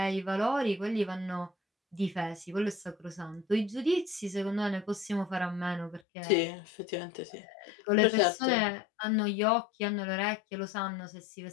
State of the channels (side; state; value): right; drops out; at 6.0 s